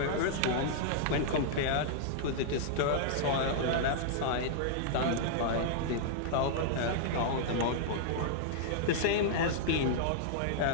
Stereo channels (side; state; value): both; different; correlation -0.01